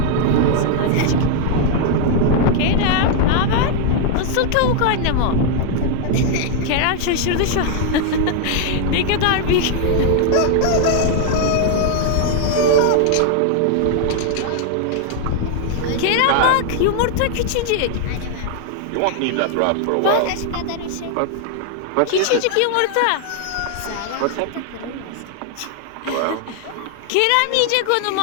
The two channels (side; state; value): both; different; correlation 0.00